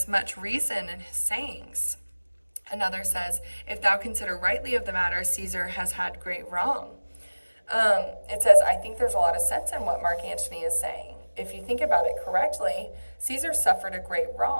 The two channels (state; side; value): inverted; both; correlation -1.00